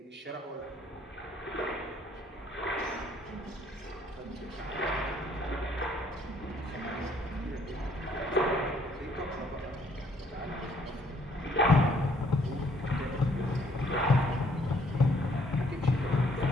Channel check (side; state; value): both; normal; correlation 0.65